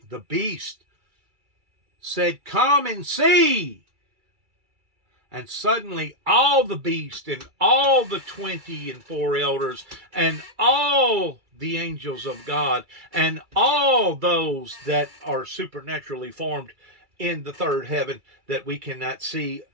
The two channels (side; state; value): left; late; 2.3 ms